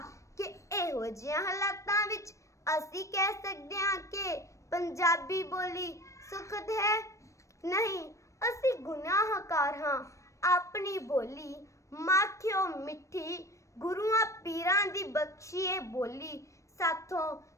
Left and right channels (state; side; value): late; right; 0.15 ms